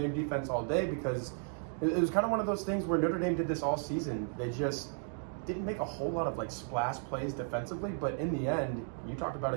defense all day because it was kind of one of those things where Notre Dame did this all season. They just didn't make a whole lot of like splash plays defensively, but in the end, you talked about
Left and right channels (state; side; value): silent; left; 55 dB below the other